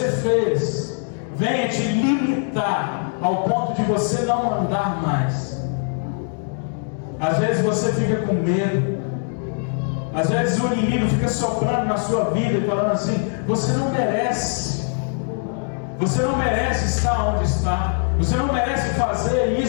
fez venha te limitar ao ponto de você não andar mais. Às vezes você fica com medo, às vezes o inimigo fica soprando na sua vida e falando assim: você não merece estar onde está, você não merece fazer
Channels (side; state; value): right; silent; 57 dB below the other